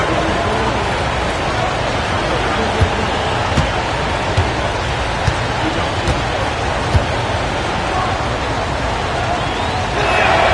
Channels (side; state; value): both; identical; correlation 1.00